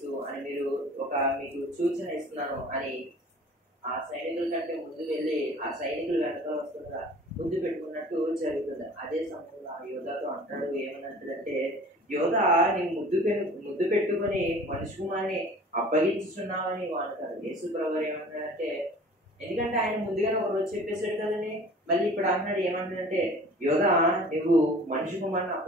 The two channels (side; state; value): both; normal; correlation 0.46